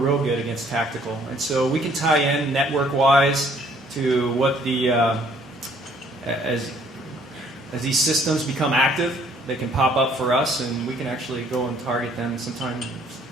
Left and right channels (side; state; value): both; normal; correlation 0.61